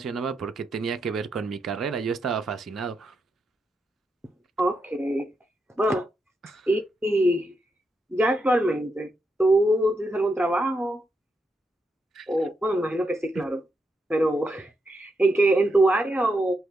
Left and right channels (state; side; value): normal; both; correlation 0.83